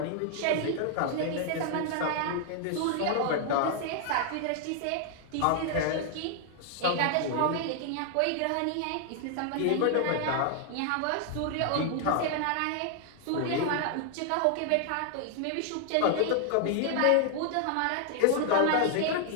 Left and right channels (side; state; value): both; different; correlation 0.00